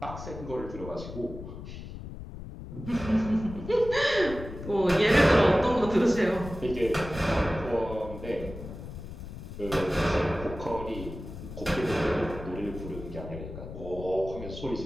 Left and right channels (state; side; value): noise; left; rumble, 11 dB below the sound